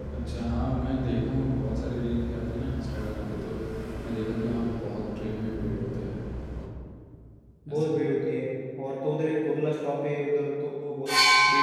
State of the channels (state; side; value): identical; both; correlation 1.00